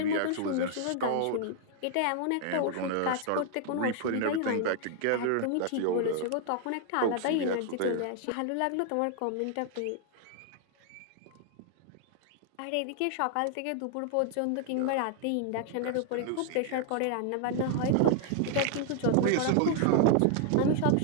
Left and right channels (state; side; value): different; both; correlation 0.00